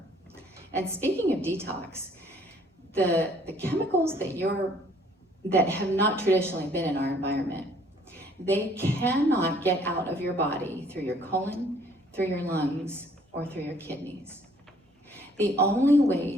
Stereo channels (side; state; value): both; normal; correlation 0.60